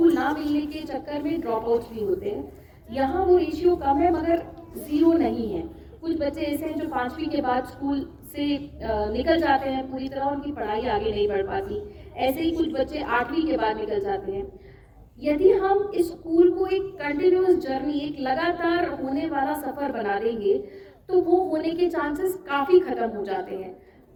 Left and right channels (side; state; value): both; identical; correlation 1.00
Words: ना मिलने के चक्कर में ड्रॉप आउट्स भी होते हैं। यहाँ वो रेशियो कम है मगर 0 नहीं है। कुछ बच्चे ऐसे हैं जो 5वीं के बाद स्कूल से निकल जाते हैं पूरी तरह, उनकी पढ़ाई आगे नहीं बढ़ पाती। ऐसे ही कुछ बच्चे 8वीं के बाद निकल जाते हैं। यदि हम इस स्कूल को एक कंटिन्यूअस जर्नी, एक लगातार होने वाला सफर बना देंगे तो वो होने के चांसेस काफी खत्म हो जाते हैं।